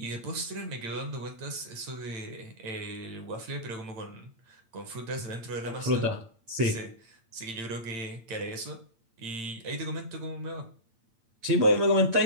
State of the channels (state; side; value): late; left; 8.8 ms